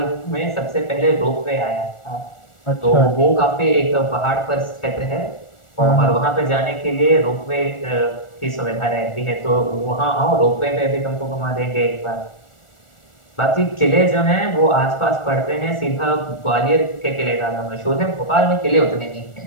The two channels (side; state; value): right; late; 1.4 ms